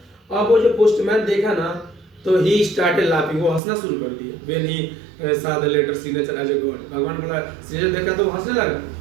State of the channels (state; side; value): drops out; left; at 3.6 s